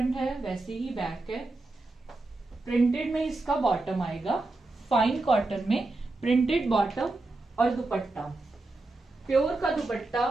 है वैसे ही बैक है। प्रिंटेड में इसका बॉटम आएगा, फाइन कॉटन में प्रिंटेड बॉटम, और दुपट्टा प्योर का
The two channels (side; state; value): left; quieter; 3.1 dB